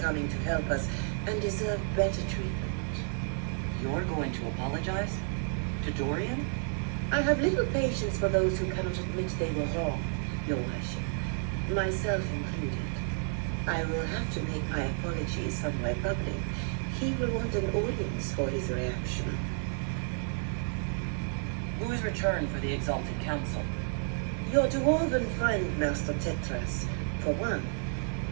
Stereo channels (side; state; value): left; silent; 57 dB below the other